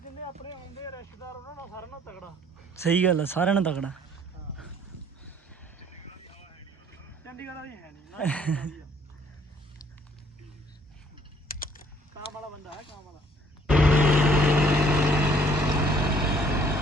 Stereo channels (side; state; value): both; normal; correlation 0.60